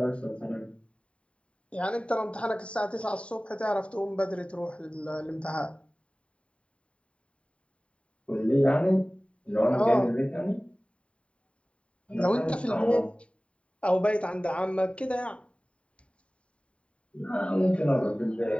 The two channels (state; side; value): late; right; 0.061 ms